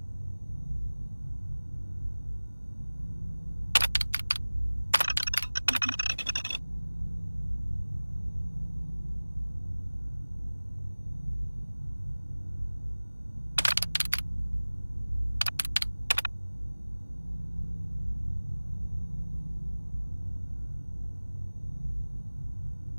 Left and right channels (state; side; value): inverted; both; correlation -1.00